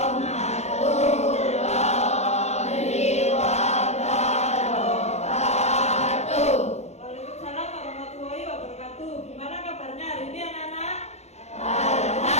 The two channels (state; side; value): late; right; 0.32 ms